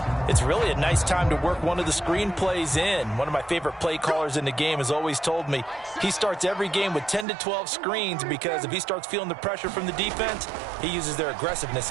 it's really a nice time to work one of the screen plays in. One of my favorite play callers in the game has always told me he starts every game with 10 to 12 screens because if he starts feeling the pressure from the defense, he uses their aggressiveness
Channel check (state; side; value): drops out; left; at 7.2 s